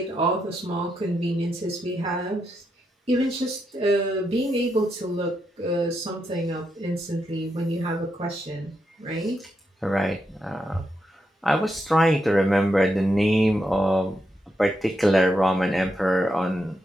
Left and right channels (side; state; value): both; normal; correlation 0.83